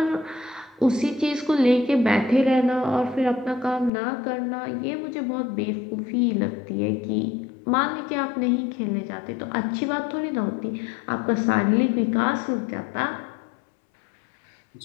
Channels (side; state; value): right; drops out; at 3.9 s